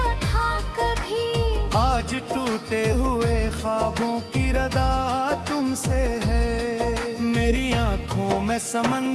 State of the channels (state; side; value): identical; both; correlation 1.00